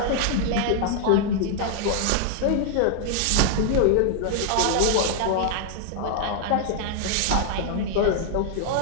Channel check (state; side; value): different; both; correlation 0.00